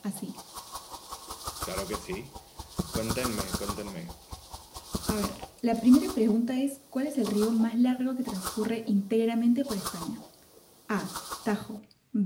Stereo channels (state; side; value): identical; both; correlation 1.00